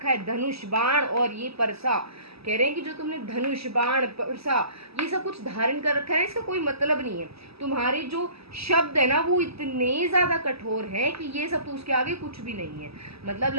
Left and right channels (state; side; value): late; left; 0.77 ms